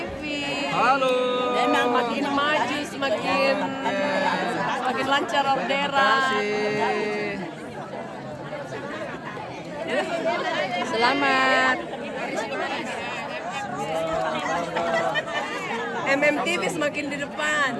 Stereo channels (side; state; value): both; identical; correlation 1.00